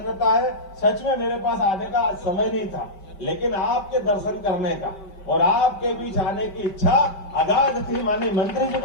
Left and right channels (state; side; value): late; right; 5.1 ms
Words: है, सच में मेरे पास आने का आज समय नहीं था, लेकिन आपके दर्शन करने का और आपके बीच आने की इच्छा अगाध थी। माननीय मंत्री जी